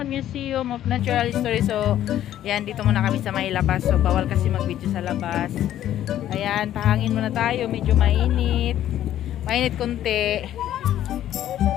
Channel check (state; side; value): quieter; right; 12.0 dB